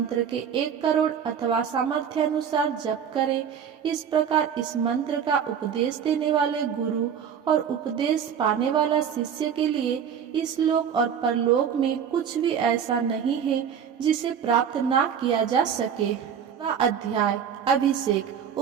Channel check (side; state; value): left; quieter; 7.9 dB